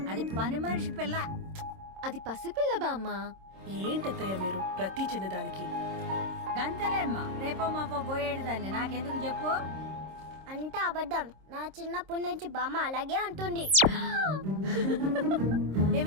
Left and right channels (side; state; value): left; late; 26 ms